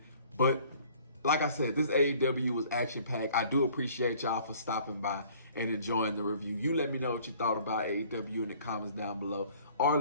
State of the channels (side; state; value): both; inverted; correlation -0.54